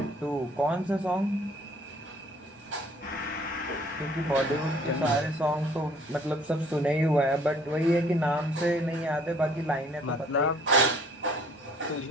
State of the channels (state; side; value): normal; both; correlation 0.57